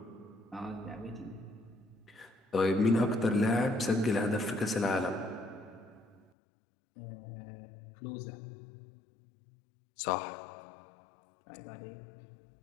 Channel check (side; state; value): right; drops out; at 6.3 s